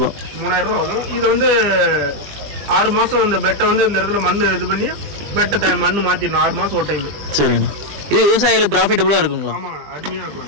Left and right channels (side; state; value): left; late; 20 ms